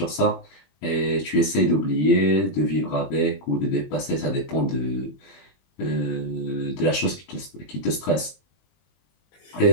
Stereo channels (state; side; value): late; right; 21 ms